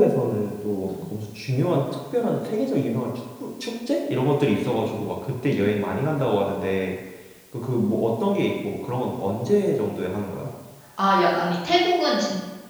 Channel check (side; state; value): both; identical; correlation 1.00